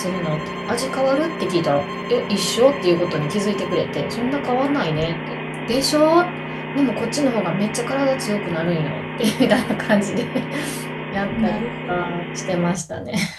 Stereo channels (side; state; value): both; identical; correlation 1.00